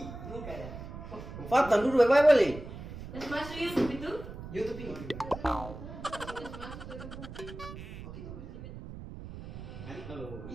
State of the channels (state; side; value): noise; right; rumble, 11 dB below the sound